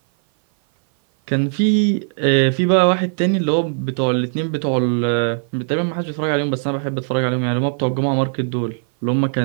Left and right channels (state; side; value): silent; left; 57 dB below the other